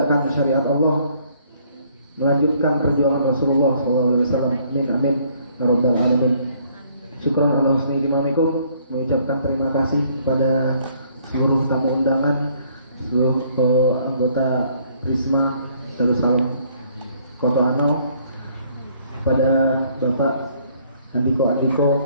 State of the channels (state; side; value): inverted; both; correlation -0.63